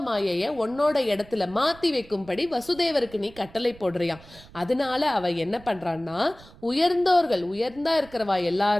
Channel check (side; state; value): right; noise; rumble, 22 dB below the sound